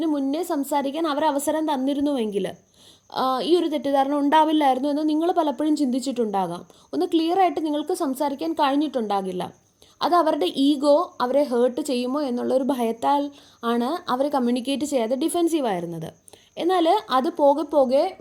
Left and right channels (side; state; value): both; identical; correlation 1.00